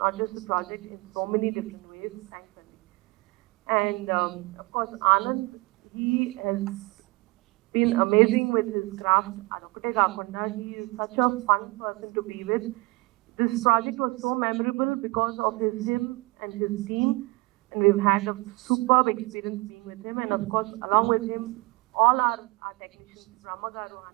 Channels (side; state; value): left; quieter; 25.1 dB